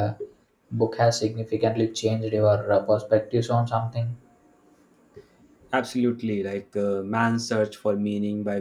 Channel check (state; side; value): identical; both; correlation 1.00